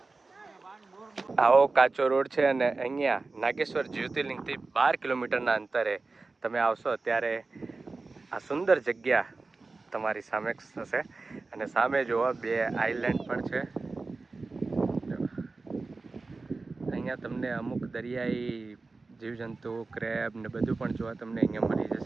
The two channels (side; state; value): left; quieter; 3.7 dB